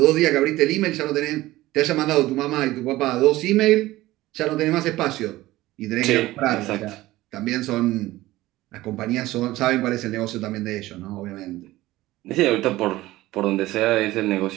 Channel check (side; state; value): left; quieter; 17.2 dB